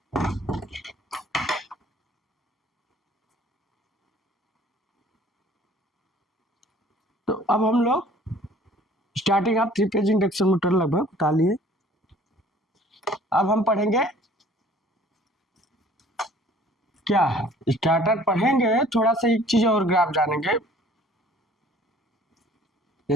तो अब हम लोग starting of three phase induction motor लगभग बता लिए। अब हम पढ़ेंगे क्या, स्टार्टर पढ़ेंगे, थोड़ा सा एक चीज और ग्राफ जानेंगे।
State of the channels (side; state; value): both; normal; correlation 0.53